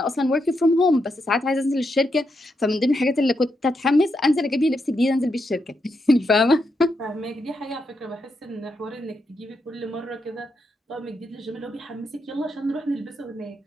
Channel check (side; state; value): both; normal; correlation 0.82